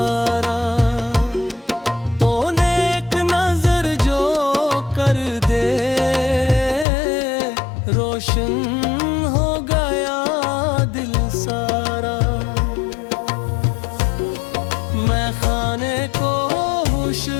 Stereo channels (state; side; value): drops out; right; at 6.9 s